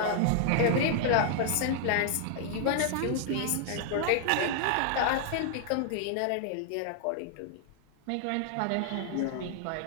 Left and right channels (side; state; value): both; different; correlation 0.00